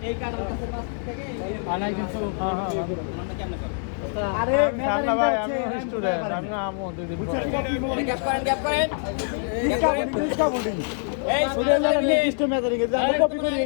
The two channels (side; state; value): right; silent; 62 dB below the other